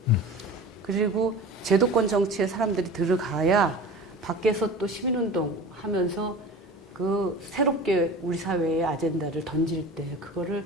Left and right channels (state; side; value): normal; both; correlation 0.37